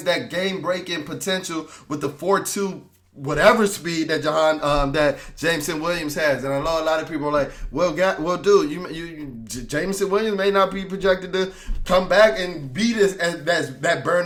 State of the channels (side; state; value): both; identical; correlation 1.00